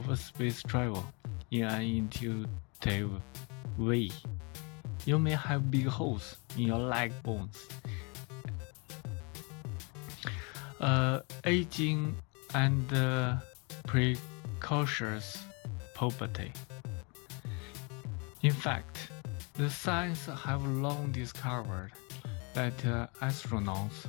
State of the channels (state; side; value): quieter; right; 32.2 dB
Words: space travel in an intuitive way. You may have big holes in your leg bones, aging, and precocious puberty. In fact, the scientists have long discovered that astronauts